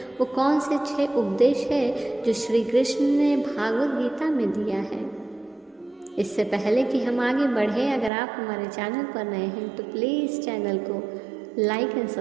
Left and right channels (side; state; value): left; drops out; at 8.1 s